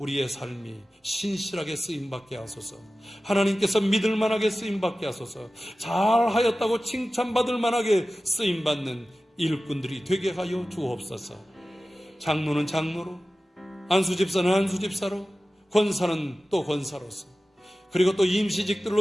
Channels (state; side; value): normal; both; correlation 0.95